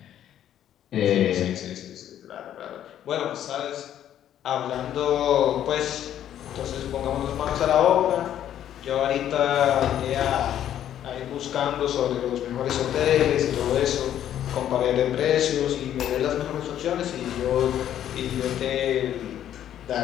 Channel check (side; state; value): right; quieter; 10.9 dB